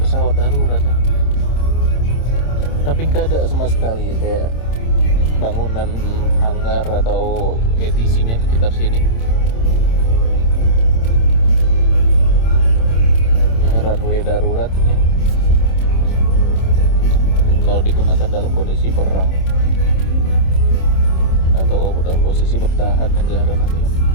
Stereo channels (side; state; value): right; late; 26 ms